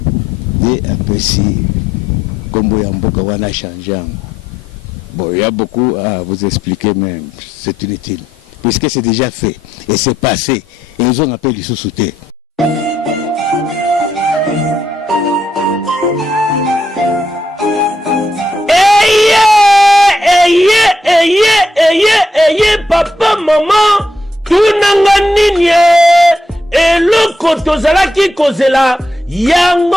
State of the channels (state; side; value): normal; both; correlation 0.79